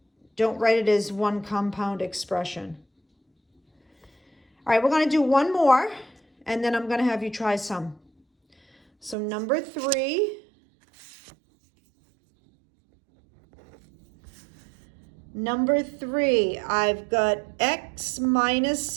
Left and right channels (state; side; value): drops out; left; at 9.2 s